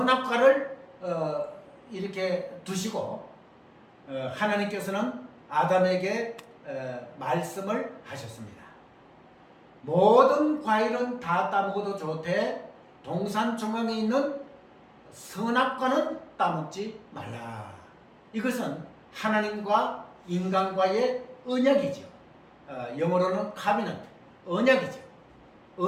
이렇게 두시고 하나님께서는 아담에게 말씀을 하셨습니다. 모든 과일은 다 따먹어도 좋되 동산 중앙에 있는 선악과는 따먹지 말라. 이것은 하나님과 인간과의 언약이죠. 영어로는 카비넌트, 언약이죠.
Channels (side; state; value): both; identical; correlation 1.00